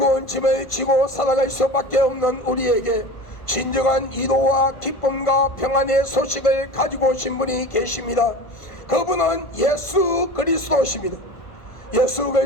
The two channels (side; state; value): right; late; 1.5 ms